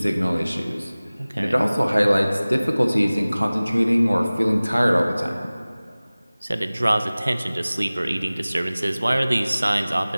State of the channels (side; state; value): both; inverted; correlation -0.99